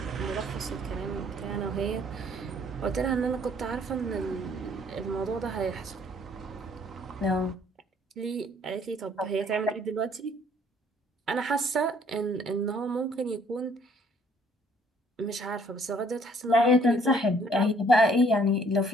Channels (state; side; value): normal; both; correlation 0.62